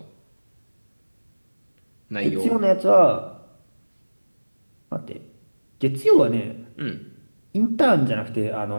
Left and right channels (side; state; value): both; inverted; correlation -1.00